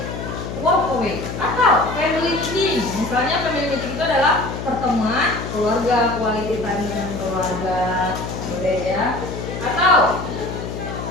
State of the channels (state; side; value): noise; left; hum, 7 dB below the sound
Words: walk away atau family meeting. Misalnya family meeting itu adalah pertemuan keluarga, quality time dengan keluarga, boleh ya. Atau